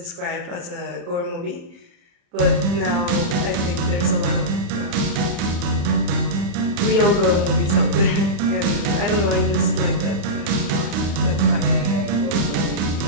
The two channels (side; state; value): left; late; 36 ms